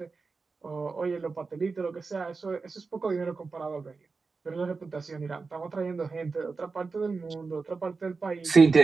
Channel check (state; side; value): quieter; left; 4.4 dB